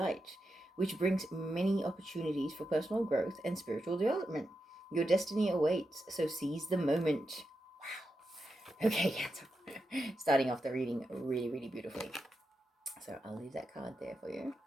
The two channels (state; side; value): normal; both; correlation 0.88